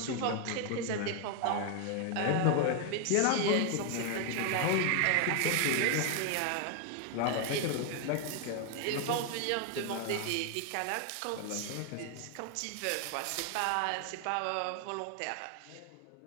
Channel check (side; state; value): both; different; correlation 0.00